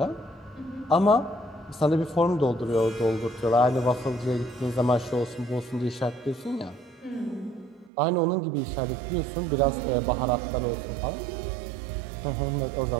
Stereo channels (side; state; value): left; drops out; at 7.9 s